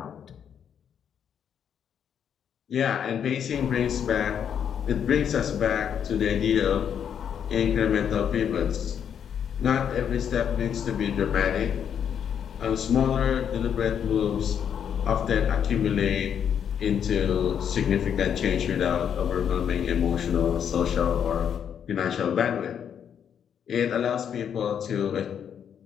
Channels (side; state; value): right; quieter; 8.3 dB